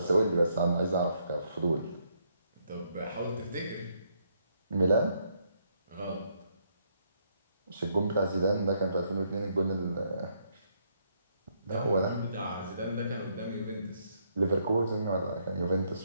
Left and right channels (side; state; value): both; inverted; correlation -0.73